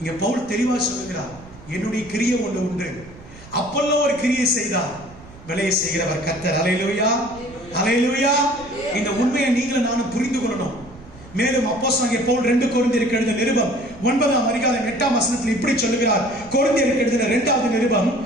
இங்க பவுல் தெளிவா சொல்லுகிறார், என்னுடைய கிரியை ஒன்று உண்டு, அப்போலோ ஒரு கிரியை செய்தார், விலையை செய்கிறவர் கர்த்தர். அல்லேலூயா. அல்லேலூயா. இந்த உண்மையை நீங்களும் நானும் புரிந்து கொள்ளணும். மேலும் அப்போஸ்தலனாகிய பவுல் 2 கொரிந்தியருக்கு எழுதின நிருபம் 9ஆம் அதிகாரம் 8ஆம் வசனத்தில் இப்படி சொல்லுகிறார். கொரிந்தியருக்கு எழுதின 2வது நிருபம்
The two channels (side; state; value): right; noise; rumble, 20 dB below the sound